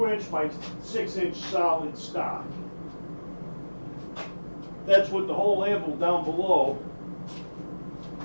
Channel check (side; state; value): both; inverted; correlation -1.00